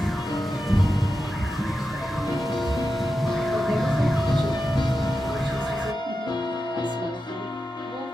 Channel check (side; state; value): both; normal; correlation 0.90